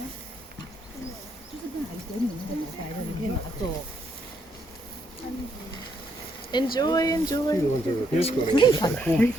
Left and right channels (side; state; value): both; normal; correlation 0.74